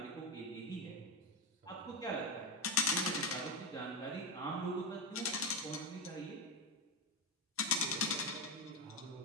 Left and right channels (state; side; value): normal; both; correlation 0.11